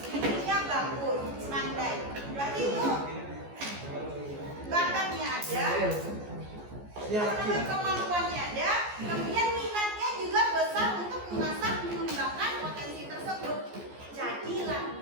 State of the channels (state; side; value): late; left; 14 ms